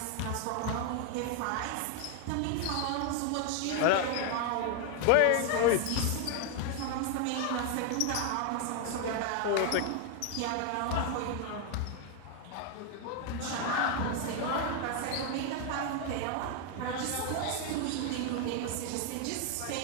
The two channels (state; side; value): different; both; correlation 0.01